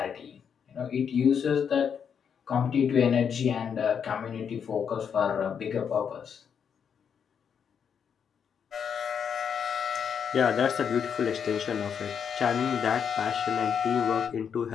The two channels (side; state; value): right; quieter; 7.3 dB